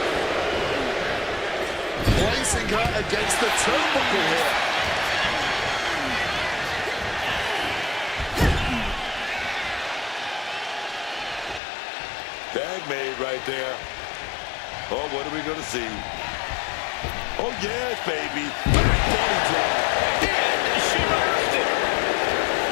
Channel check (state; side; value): drops out; right; at 11.6 s